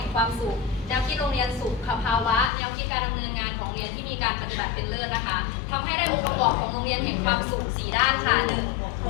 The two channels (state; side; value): drops out; right; at 2.5 s